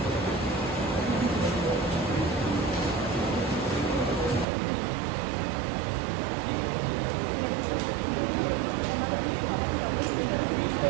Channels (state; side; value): drops out; left; at 4.5 s